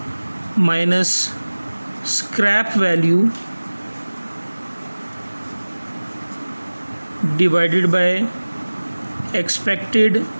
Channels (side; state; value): both; inverted; correlation -1.00